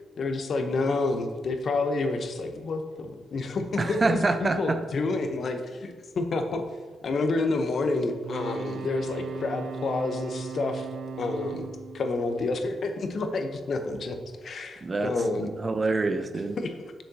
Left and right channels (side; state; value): both; normal; correlation 0.82